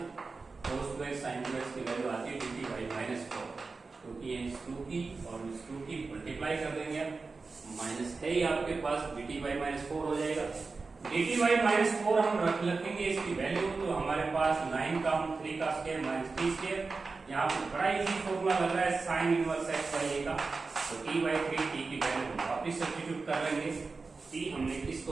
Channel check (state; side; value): quieter; left; 4.1 dB